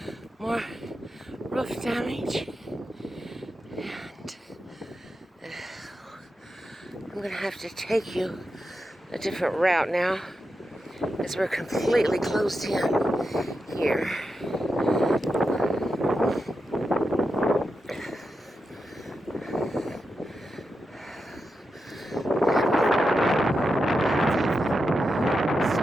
more roof damage. And I'm going to have to take you a different route now, as we're completely closed in here.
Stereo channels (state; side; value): normal; both; correlation 0.88